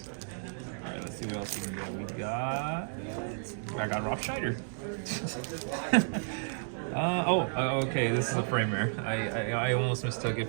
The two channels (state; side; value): silent; left; digital silence